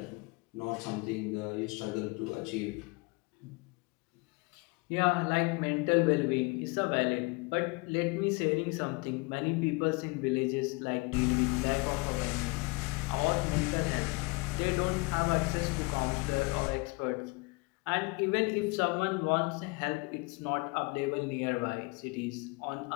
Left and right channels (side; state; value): right; quieter; 28.3 dB